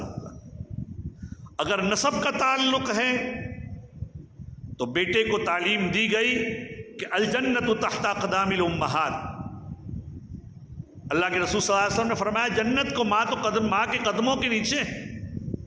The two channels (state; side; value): identical; both; correlation 1.00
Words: ہوگا. اگر نسب کا تعلق ہے تو بیٹے کو تعلیم دی گئی کہ الجنت تحت اقدام الامہات. اللہ کے رسول صلی اللہ علیہ وسلم نے فرمایا جنت کو ماں کے قدموں کے نیچے.